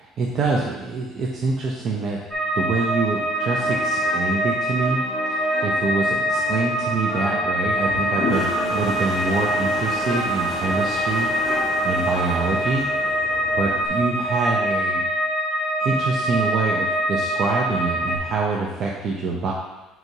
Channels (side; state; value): both; normal; correlation 0.60